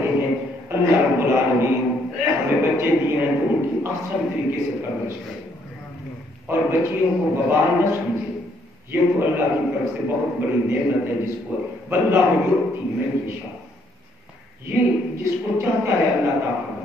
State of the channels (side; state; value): both; normal; correlation 0.69